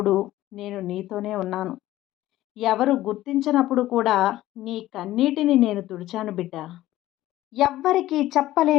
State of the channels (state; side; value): quieter; right; 15.3 dB